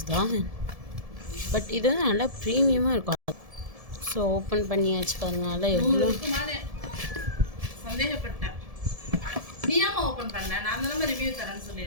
தான். பட் இது வந்து நல்லா ப்ரீமியமாக இருக்கும். ஸோ ஓப்பன் பண்ணியாச்சு பாருங்கனால எவ்வளோ சந்தேகப்பட்டேன். ஓப்பன் பண்ணேன், நான் ரிவ்யூ தரேன்னு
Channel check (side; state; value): left; late; 1.7 ms